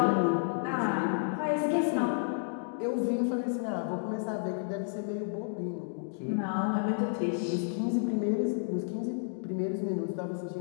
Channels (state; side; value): silent; right; digital silence